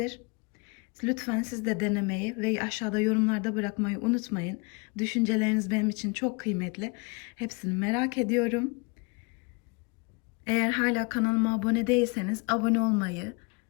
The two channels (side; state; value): right; quieter; 30.2 dB